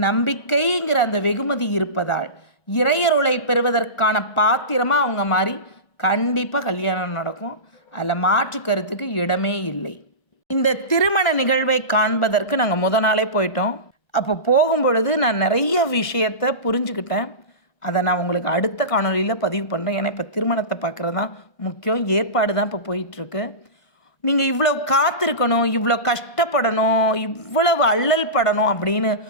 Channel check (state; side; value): late; right; 1.4 ms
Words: அந்த வெகுமதி இருப்பதால் இறையருளை பெறுவதற்கான பாத்திரமாக அவங்க மாதிரி கண்டிப்பாக கல்யாணம் நடக்கும். அதில் மாற்று கருத்துக்கு இடமே இல்லை. இந்த திருமண நிகழ்வை காண்பதற்கு நாங்கள் முத நாளே போயிட்டோம். அப்போ போகும்பொழுது நான் நிறைய விஷயத்தை புரிஞ்சுக்கிட்டேன். அதை நான் உங்களுக்கு அடுத்த காணொலியில் பதிவு பண்ணுறேன். ஏன்னா இப்போ திருமணத்தை பார்க்குறது தான் முக்கியம். ஏற்பாடு தான் இப்போ போயிட்டுருக்கு. நீங்கள் இவ்வளோ காத்திருக்கணும், இவ்வளோ கஷ்டப்படணும், இவ்வளவு அல்லல் படணும் அப்படின்னு